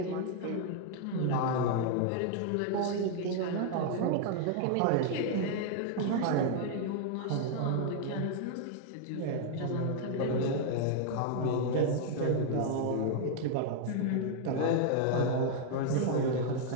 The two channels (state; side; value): different; both; correlation 0.00